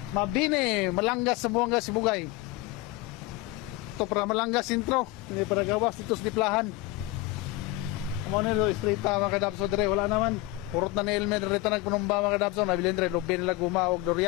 Mabini, Malanggas sa Buanga, Sibugay. Ito para Malanggas intro, hindi para gawas dito sa Diplahan. Amo nilo straight mga kadabso dire, wala naman. Purot na ni Elmer rito nagpunumba mga kadabso, nabilin dire lobby nila gumawag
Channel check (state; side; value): quieter; right; 18.3 dB